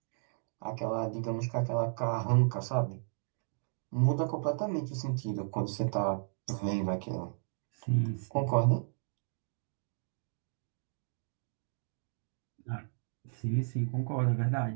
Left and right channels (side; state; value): left; silent; digital silence